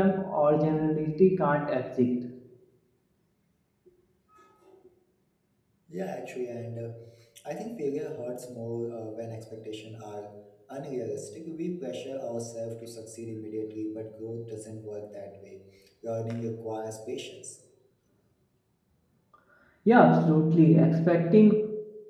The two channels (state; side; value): identical; both; correlation 1.00